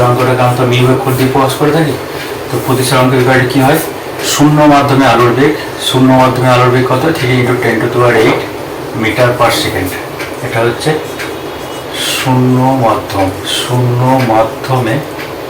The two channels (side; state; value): both; identical; correlation 1.00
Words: আমরা মিউ অক্ষর দিয়ে প্রকাশ করে থাকি। তো প্রতিসরাঙ্কের ব্যাপারে কী হয়, শূন্য মাধ্যমে আলোর বেগ কত, 3 × 10⁸ মিটার পার সেকেন্ড। এটা হচ্ছে শূন্য মাধ্যমে